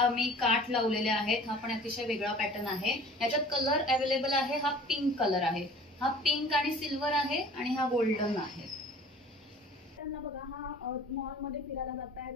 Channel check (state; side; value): normal; both; correlation 0.46